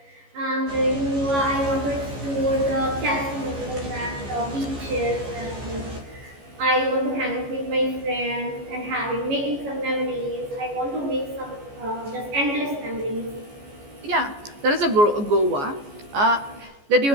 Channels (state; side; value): late; left; 14 ms